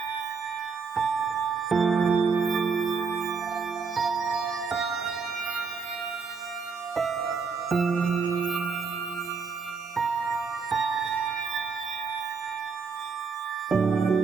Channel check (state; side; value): quieter; left; 5.2 dB